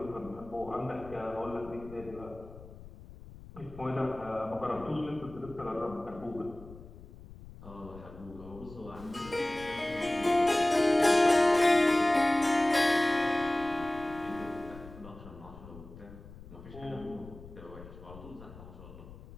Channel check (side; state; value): left; noise; rumble, 17 dB below the sound